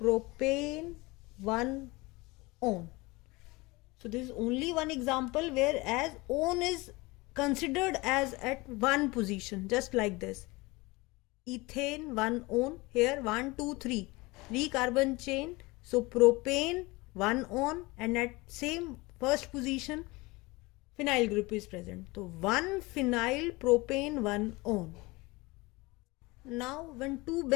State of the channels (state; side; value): quieter; right; 23.2 dB